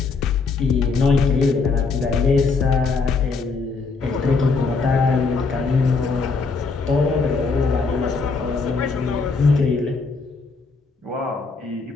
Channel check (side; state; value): right; quieter; 4.4 dB